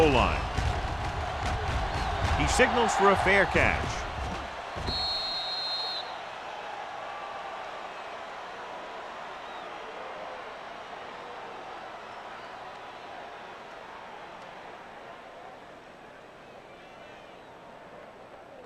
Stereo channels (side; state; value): both; identical; correlation 1.00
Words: line. He signals for a fair catch.